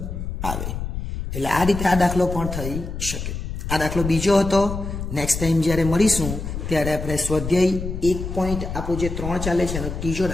આવે. એટલે આ રીતે આ દાખલો પણ થઈ શકે. આ દાખલો બીજો હતો. નેક્સ્ટ ટાઈમ જ્યારે મળીશું ત્યારે આપણે સ્વાધ્યાય 1 પોઈન્ટ આપણું જે 3 ચાલે છે એનો ત્રીજો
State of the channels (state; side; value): noise; left; rumble, 6 dB below the sound